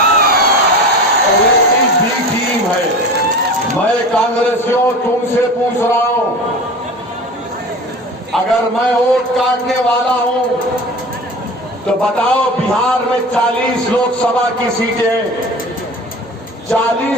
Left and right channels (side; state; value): both; normal; correlation 0.34